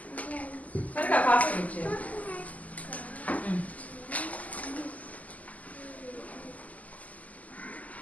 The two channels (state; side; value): late; right; 0.075 ms